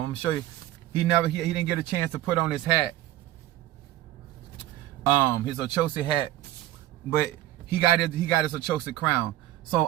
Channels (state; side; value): quieter; left; 14.6 dB